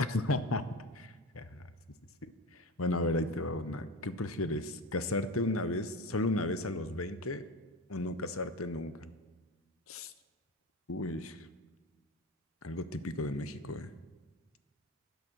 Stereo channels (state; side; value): normal; both; correlation 0.26